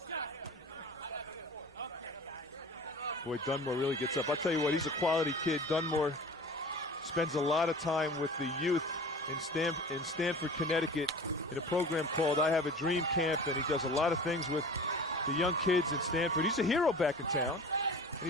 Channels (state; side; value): normal; both; correlation 0.39